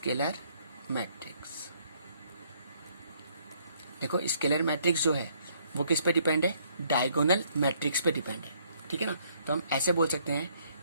मैट्रिक्स, देखो स्केलर मैट्रिक्स जो है वो किस पे डिपेंड है, डायगोनल मैट्रिक्स पे डिपेंड है, ठीक है ना। तो हम ऐसे बोल सकते हैं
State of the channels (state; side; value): inverted; both; correlation -0.66